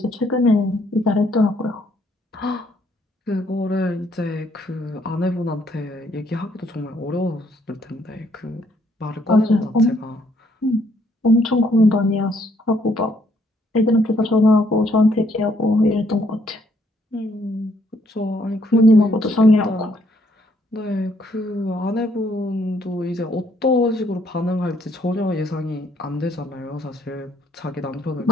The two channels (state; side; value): normal; both; correlation 0.68